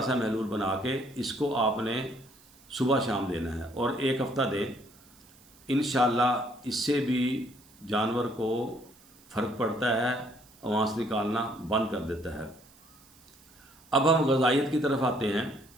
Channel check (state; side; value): noise; right; hiss, 27 dB below the sound